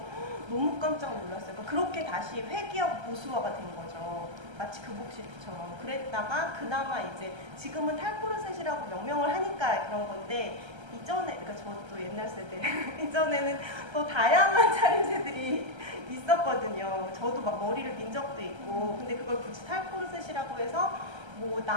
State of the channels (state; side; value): late; left; 1.3 ms